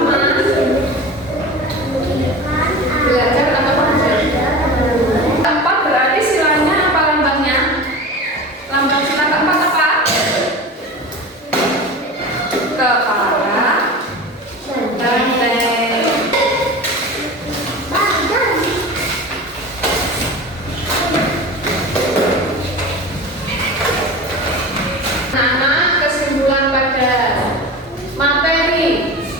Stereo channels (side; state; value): both; normal; correlation 0.32